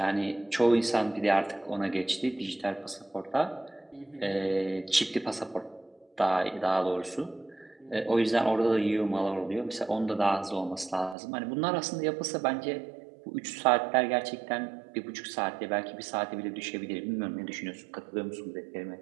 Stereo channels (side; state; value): left; drops out; at 11.2 s